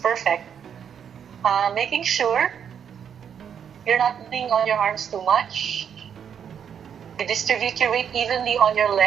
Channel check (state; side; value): quieter; left; 8.0 dB